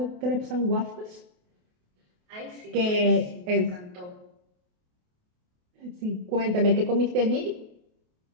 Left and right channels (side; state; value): left; late; 28 ms